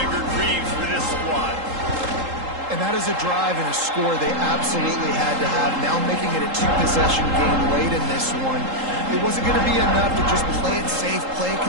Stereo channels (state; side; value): late; left; 3.8 ms